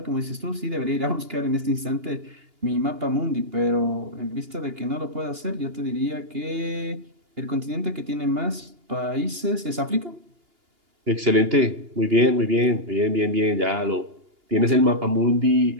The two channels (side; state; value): left; late; 2.8 ms